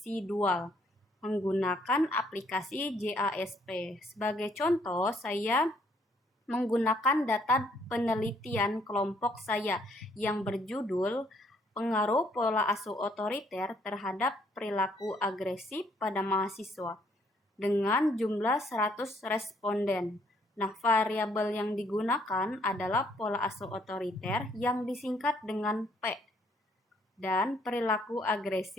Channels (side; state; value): both; normal; correlation 0.67